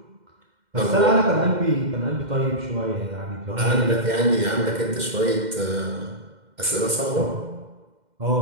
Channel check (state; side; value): late; left; 2.1 ms